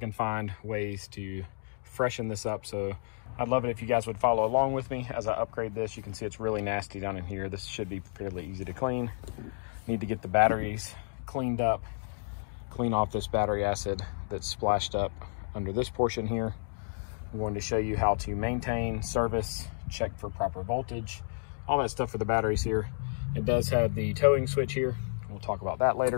find ways to freshen this up. So I'd love it if you guys would follow along with me as I upgrade this. You can see it's really nasty down in here. This should be fairly easy to clean. Need to get the batteries cleaned up, clean off this battery acid that's splashed up under this portion here. I'm going to show you how to maintain, service, check for proper voltage, all that stuff for the batteries here. It does have the towing switch here. We'll talk about that later.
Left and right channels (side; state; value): right; silent; digital silence